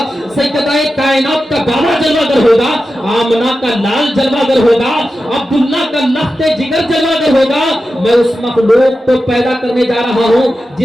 سیدہ کائنات کا بابا جلوہ گر ہوگا، آمنہ کا لال جلوہ گر ہوگا، عبداللہ کا لخت جگر جلوہ گر ہوگا۔ میں اس مخلوق کو پیدا کرنے جا رہا ہوں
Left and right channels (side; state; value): both; normal; correlation 0.92